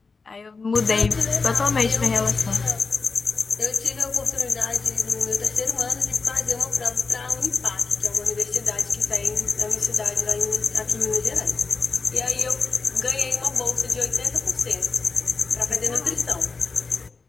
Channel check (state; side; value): quieter; right; 4.4 dB